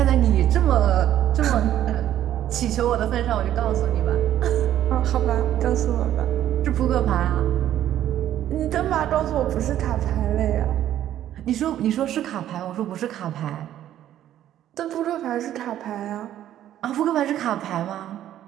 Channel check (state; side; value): quieter; left; 11.8 dB